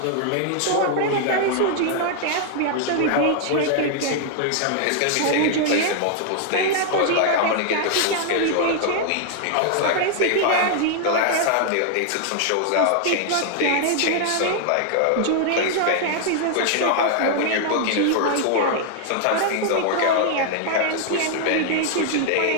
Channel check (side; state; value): both; different; correlation 0.00